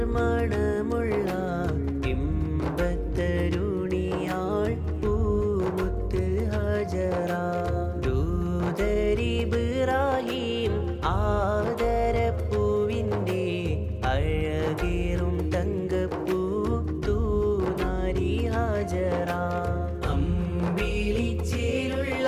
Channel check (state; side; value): identical; both; correlation 1.00